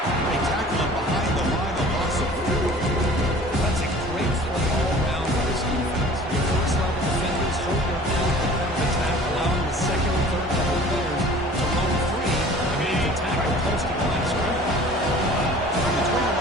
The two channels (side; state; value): both; normal; correlation 0.46